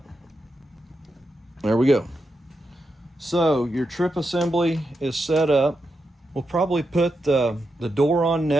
There we go. So your trip assembly is set up. We'll probably put the door on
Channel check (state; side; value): normal; both; correlation 0.86